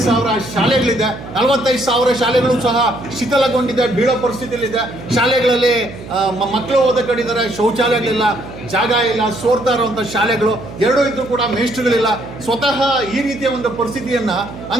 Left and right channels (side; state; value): right; noise; hum, 14 dB below the sound